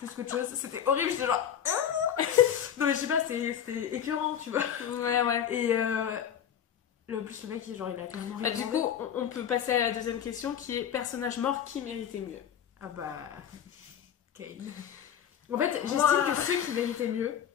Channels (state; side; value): quieter; right; 9.1 dB